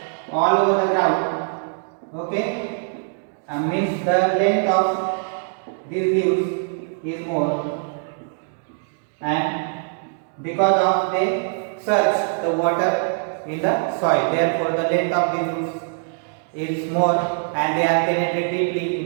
all over the ground. Okay, means the length of these leaves is more, and because of they search the water in the soil, therefore the length of these roots is more and they are penetrated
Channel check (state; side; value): silent; left; digital silence